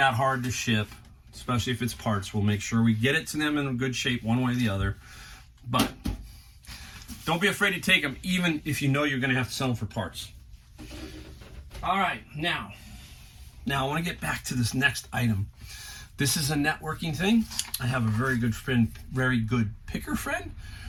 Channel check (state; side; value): identical; both; correlation 1.00